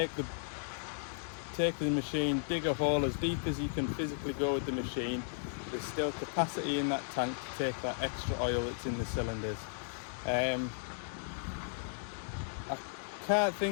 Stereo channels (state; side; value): silent; right; digital silence